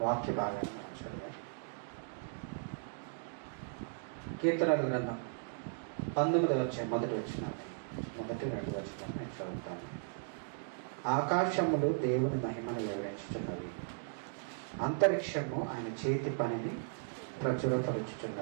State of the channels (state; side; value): silent; left; digital silence